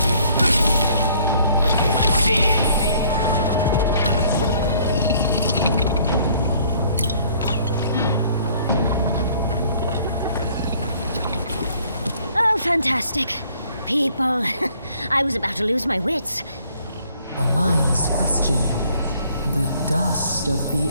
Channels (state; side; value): inverted; both; correlation -0.60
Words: Oh, fantastic. People. I was about to lose my wits. A mind's question. The dust of the